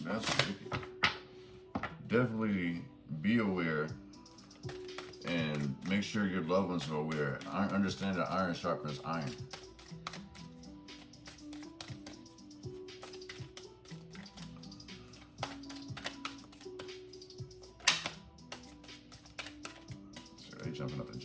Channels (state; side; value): identical; both; correlation 1.00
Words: That's wicked. Definitely be aware and make sure your loved ones are aware. I understand that iron sharpens iron. They jumping up the